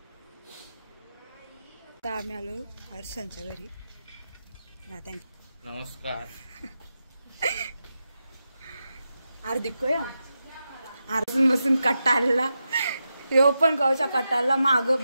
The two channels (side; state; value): both; inverted; correlation -0.89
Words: आता आम्ही आलो हर्षांच्या घरी। नमस्कार। हार्दिक अर्जुन बसून कटाळला, यो पण गावच्या कटाळला माग